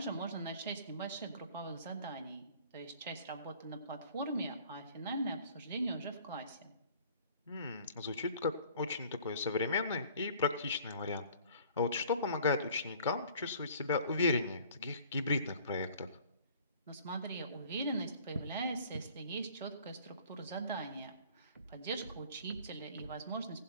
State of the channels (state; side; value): inverted; both; correlation -0.52